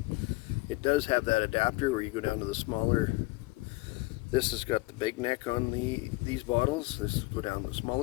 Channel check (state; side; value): quieter; right; 22.4 dB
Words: It does have that adapter where you go down to the smaller. This has got the big neck on these bottles. This go down the